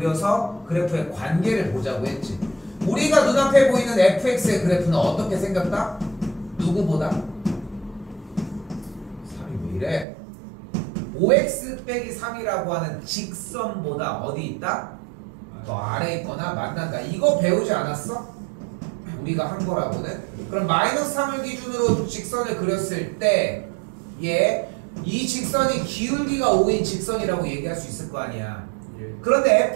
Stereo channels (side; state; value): left; drops out; at 10.1 s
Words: 그래프의 관계를 보자고 했지. 우리가 눈앞에 보이는 fx의 그래프는 어떻게 생겼다? 누구보다? 3이 왜 이래? 5x 빼기 3이라고 하는 직선보다 어디 있다? 더 아래에 있거나 만난다. 이거 배우지 않았어? 우리가 한 거라고는? 그럼 마이너스 3을 기준으로 직선을 그렸을 때 이 직선이 기울기가 5인 직선이라고 얘기할 수 있을 거 아니야. 예. 그런데